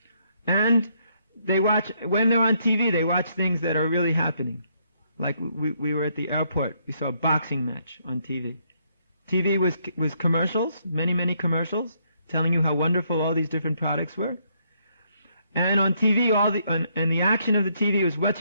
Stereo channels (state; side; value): inverted; both; correlation -0.72